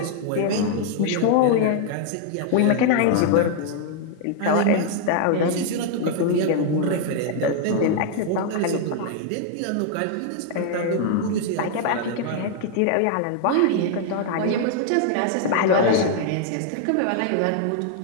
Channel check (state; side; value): different; both; correlation 0.00